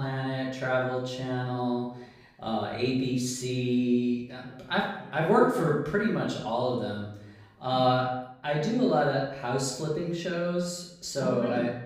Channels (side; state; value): both; identical; correlation 1.00